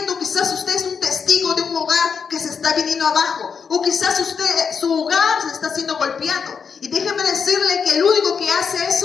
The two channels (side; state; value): right; quieter; 6.2 dB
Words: Quizás usted es un testigo de un hogar que se está viniendo abajo. O quizás su hogar se está siendo golpeado. Y déjeme decirle que el único que hace